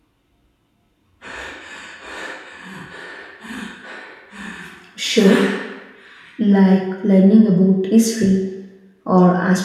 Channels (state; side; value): identical; both; correlation 1.00